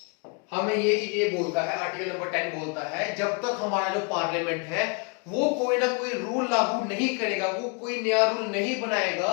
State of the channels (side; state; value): right; quieter; 33.9 dB